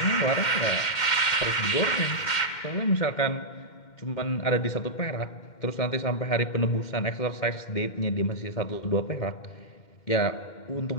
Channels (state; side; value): late; right; 2.1 ms